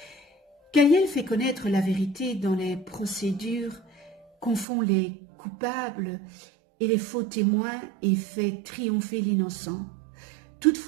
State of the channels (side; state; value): left; drops out; at 4.7 s